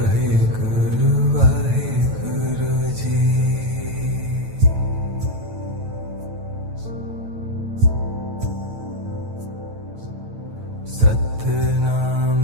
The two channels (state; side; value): late; left; 9.1 ms